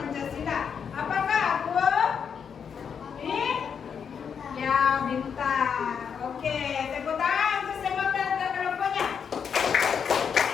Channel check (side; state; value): right; quieter; 7.0 dB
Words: Apakah aku? Ini? Ya, bintang. Oke, tepuk tangan untuk semua kelompoknya.